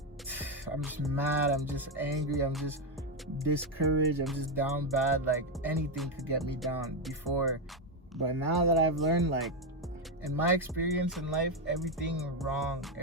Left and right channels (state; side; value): normal; both; correlation 0.07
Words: I'm just mad, I'm just angry, I'm just discouraged, I'm just down bad. Like, anything could get me down before. But now that I've learned, like, in my experience in life, everything wrong,